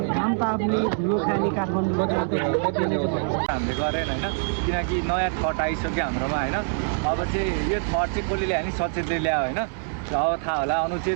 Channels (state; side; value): silent; left; 62 dB below the other